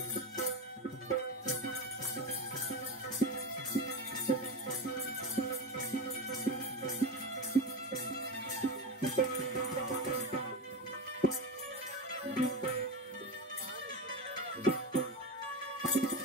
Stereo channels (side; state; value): both; normal; correlation 0.20